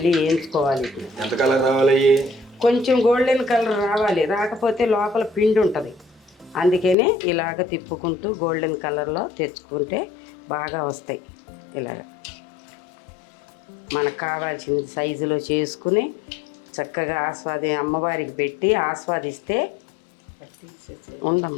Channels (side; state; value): right; drops out; at 7.0 s